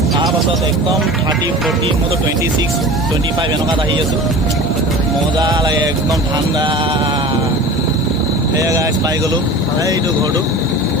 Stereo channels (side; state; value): both; normal; correlation 0.36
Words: তাৰপাছত একদম 30, 40, মইতো 26, 25 এনেকুৱাত আহি আছোঁ। মজা লাগে, একদম ঠাণ্ডা। সেয়া গাইজ পাই গ'লোঁ, এইটো ঘৰটো